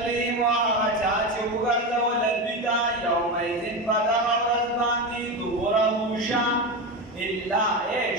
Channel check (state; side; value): normal; both; correlation 0.18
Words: هغه چا چې وګرځول دوی ته یومئذ په دغه ورځ باندې دبره شا، الا